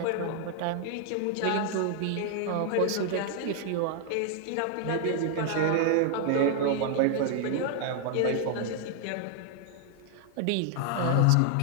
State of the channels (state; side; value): different; both; correlation 0.00